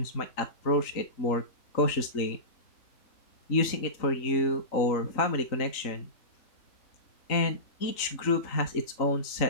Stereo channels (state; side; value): late; right; 3.8 ms